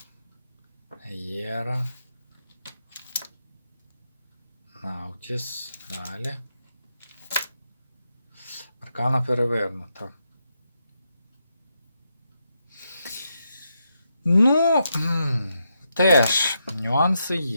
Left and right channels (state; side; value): inverted; both; correlation -0.82